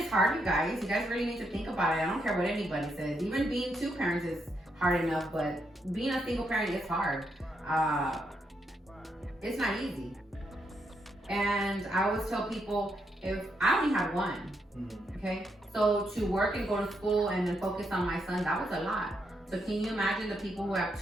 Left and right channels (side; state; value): both; normal; correlation 0.79